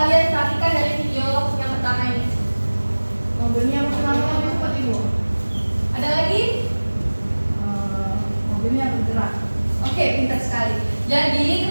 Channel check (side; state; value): both; inverted; correlation -1.00